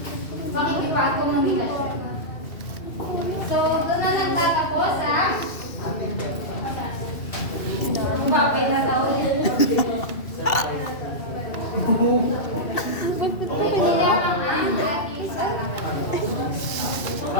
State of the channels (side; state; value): right; late; 2.7 ms